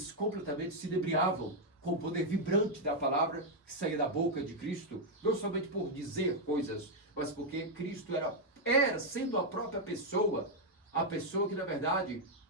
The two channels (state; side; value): normal; both; correlation -0.01